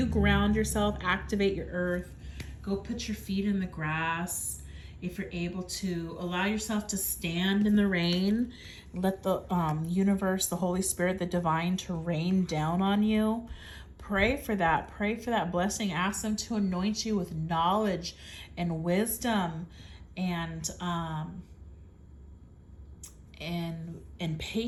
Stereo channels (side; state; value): both; identical; correlation 1.00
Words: ground yourself, activate your earth, go put your feet in the grass. If you're able to, allow yourself to stand in the rain, let the universe, the Holy Spirit, the divine to rain down on you. Pray for that. Pray for that blessing. Ask them to anoint you with knowledge and wisdom and